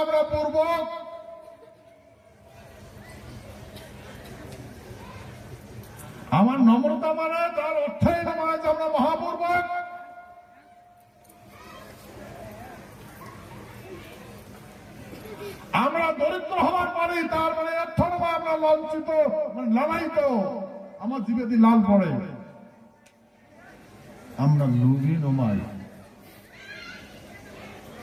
আমরা পূর্বক, আমার নম্রতা মানে তার অর্থই নয় যে আমরা মহাপূর্বক। আমরা দরিদ্র হওয়ার পরে তার মানে অর্থ নয় আমরা লাঞ্ছিত, মানে লালায়িত, আমার জীবে দিয়ে লাল পড়ে। আমরা লুবি নমাই।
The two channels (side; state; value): both; identical; correlation 1.00